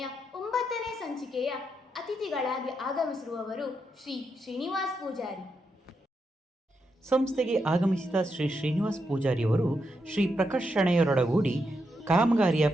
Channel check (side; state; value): both; normal; correlation 0.83